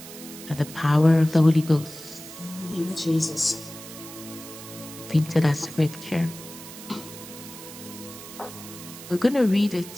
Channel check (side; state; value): right; noise; hiss, 14 dB below the sound